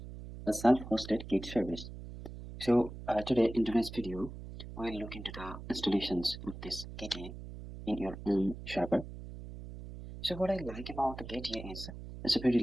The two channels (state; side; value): noise; right; hum, 11 dB below the sound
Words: a self-hosted Git service. So today in today's video, we'll look into the installations of this Gitea in your own server. So what I like about the Gitea is it's a very